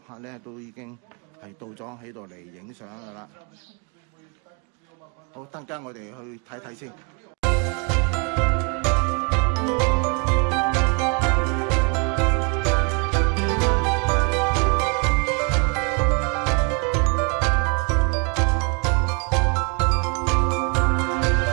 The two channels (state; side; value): quieter; left; 34.6 dB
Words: 客咧都已經係到咗喺度嚟影相㗎啦。好，等間我哋去睇睇先。